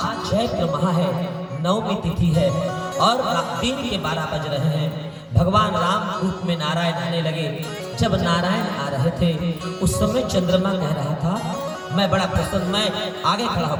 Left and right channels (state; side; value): identical; both; correlation 1.00